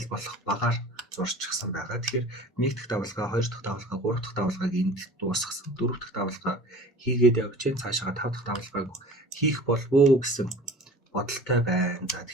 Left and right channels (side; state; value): both; normal; correlation 0.42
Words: болох багаар зурчихсан байгаа. Тэгэхээр 1 дахь давлгаа, 2 дахь давлгаа, 3 дахь давлгааг энд дуусгасан. 4 дахь давлгаа хийгээд явж чинь цаашаа 5 дахь давлгааг хийх болов уу гэсэн бодолтой байна. За